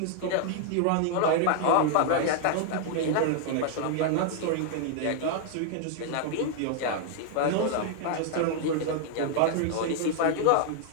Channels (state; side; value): different; both; correlation 0.00